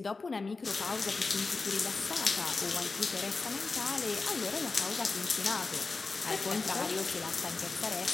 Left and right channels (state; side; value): quieter; right; 4.0 dB